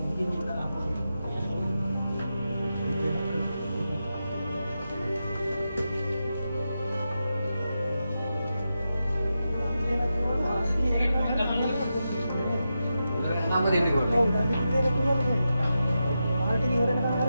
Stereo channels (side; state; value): both; inverted; correlation -0.89